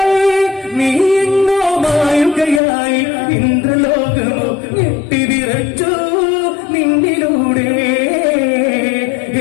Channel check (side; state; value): right; drops out; at 2.6 s